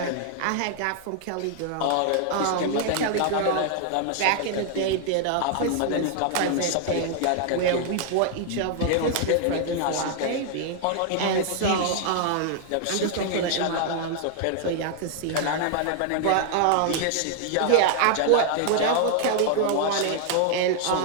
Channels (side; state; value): both; different; correlation 0.00